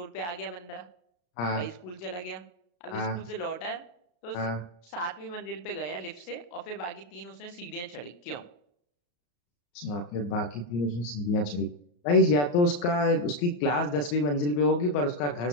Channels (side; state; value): right; late; 34 ms